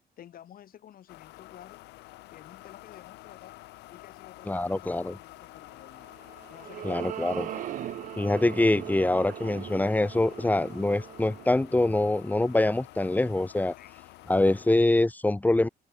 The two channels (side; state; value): both; normal; correlation 0.93